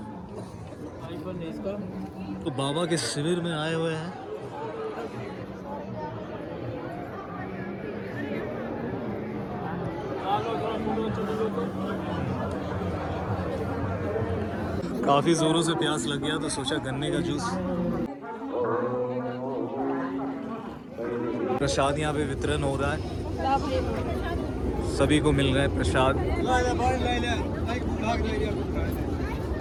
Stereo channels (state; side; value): identical; both; correlation 1.00